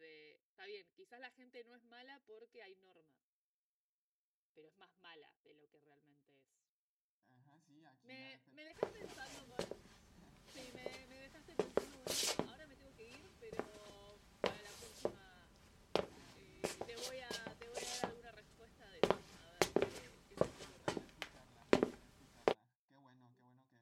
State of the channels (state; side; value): identical; both; correlation 1.00